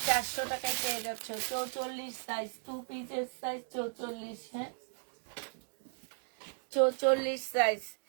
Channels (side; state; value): left; silent; digital silence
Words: 400 টাকায় পেয়ে যাচ্ছ। 44 সাইজ, 2 পিসের সাইজ 44। হ্যাঁ 44 সাইজ